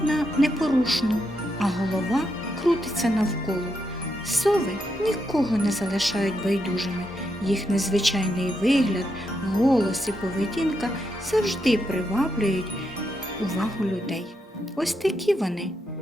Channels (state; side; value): normal; both; correlation 0.82